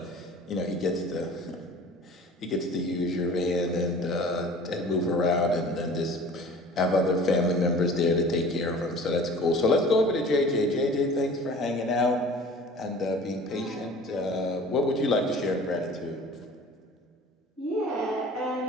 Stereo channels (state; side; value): normal; both; correlation 0.45